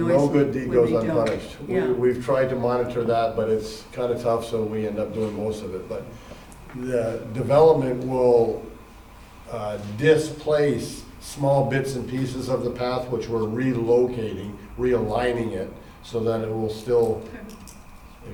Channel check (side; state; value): both; identical; correlation 1.00